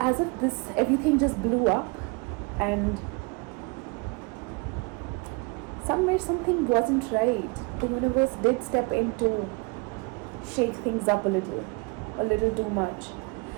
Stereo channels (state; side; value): quieter; left; 30.1 dB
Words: if everything just blew up, and somewhere something wasn't right. The universe did step in to shake things up a little too much.